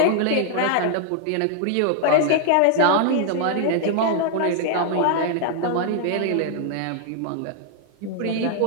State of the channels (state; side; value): different; both; correlation 0.00